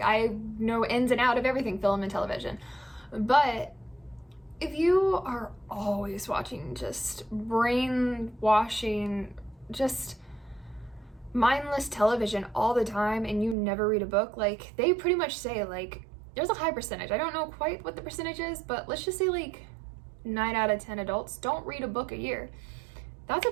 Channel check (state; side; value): drops out; left; at 13.6 s